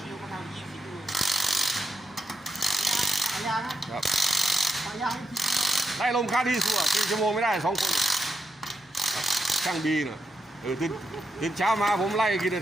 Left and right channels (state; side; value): normal; both; correlation 0.84